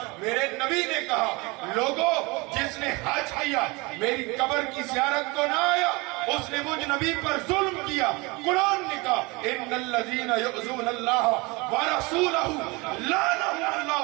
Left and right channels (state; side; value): quieter; left; 25.7 dB